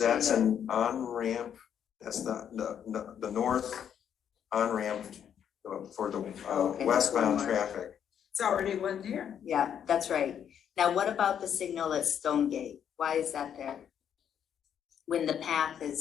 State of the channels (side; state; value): right; quieter; 8.8 dB